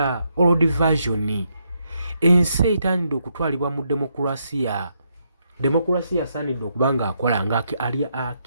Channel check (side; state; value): both; inverted; correlation -0.78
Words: old version ensi etandidde okutwalibwa mu demokrasiya. Demokrasiya asaanidde okuba nga akola nga ali